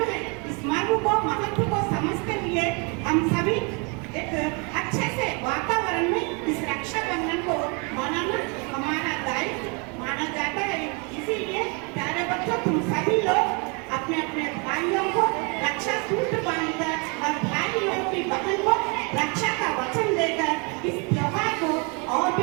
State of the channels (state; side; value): quieter; left; 32.7 dB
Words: है। इस मर्म को, महत्व को समझते हुए हम सभी एक अच्छे से वातावरण में इस रक्षाबंधन को मनाना हमारा दायित्व माना जाता है। इसीलिए प्यारे बच्चों, तुम सभी लोग अपने अपने भाइयों को रक्षा सूत्र बांधकर और भाइयों की बहन को रक्षा का वचन देकर इस त्योहार को और